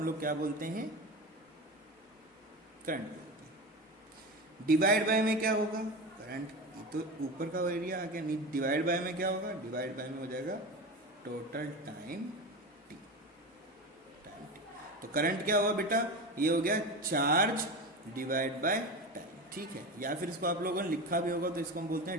लोग क्या बोलते हैं, करंट बोलते हैं। डिवाइड बाय में क्या होगा, करंट तो ऊपर का एरिया आ गया, डिवाइड बाय में क्या होगा, डिवाइड बाय में हो जाएगा टोटल टाइम टी। तो करंट क्या होगा बेटा, ये हो गया चार्ज डिवाइड बाय टाइम। ठीक है, या फिर इसको आप लोगों ने लिखा भी होगा तो इसको हम बोलते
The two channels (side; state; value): both; normal; correlation 0.25